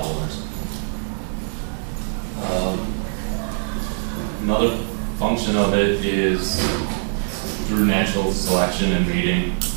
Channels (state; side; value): silent; left; 64 dB below the other